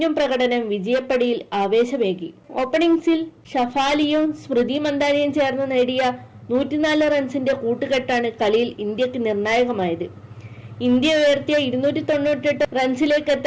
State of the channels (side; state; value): both; identical; correlation 1.00